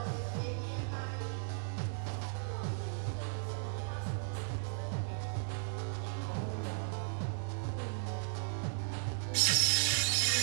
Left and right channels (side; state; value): left; silent; 54 dB below the other